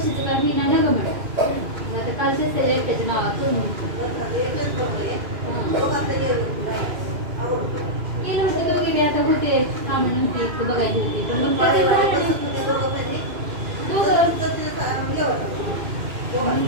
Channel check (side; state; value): left; late; 2.5 ms